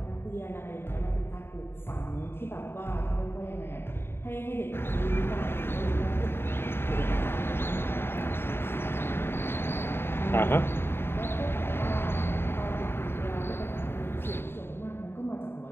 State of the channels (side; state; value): right; late; 0.11 ms